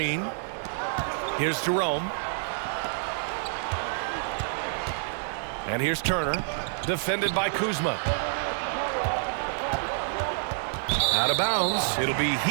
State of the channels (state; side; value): silent; left; digital silence